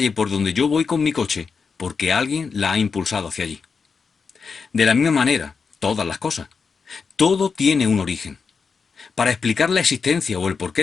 por donde yo voy con mi coche, porque alguien la ha impulsado hacia allí. De la misma manera, todas las cosas. Todo tiene un origen. Para explicar la existencia o el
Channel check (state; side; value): quieter; right; 5.3 dB